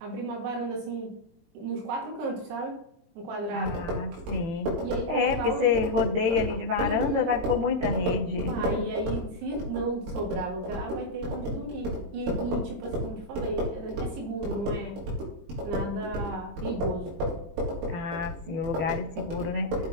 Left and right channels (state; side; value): late; left; 20 ms